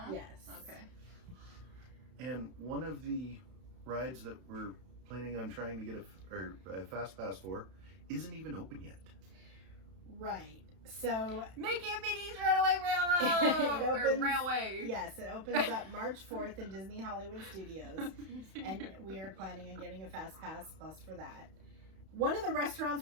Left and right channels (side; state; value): left; late; 32 ms